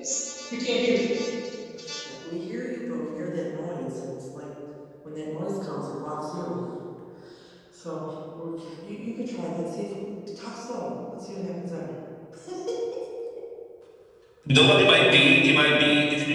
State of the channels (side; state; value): both; identical; correlation 1.00